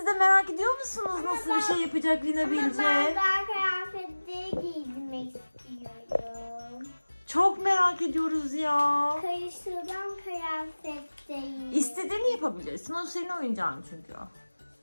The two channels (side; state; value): both; inverted; correlation -1.00